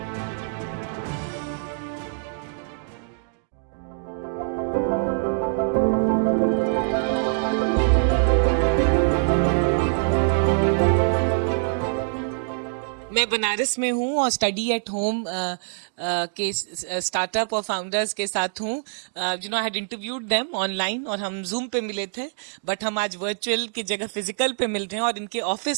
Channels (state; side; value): silent; left; digital silence